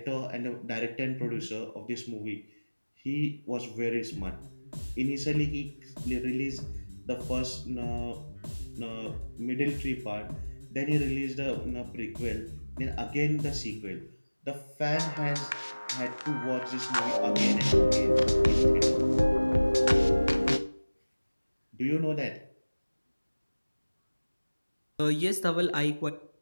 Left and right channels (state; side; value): inverted; both; correlation -1.00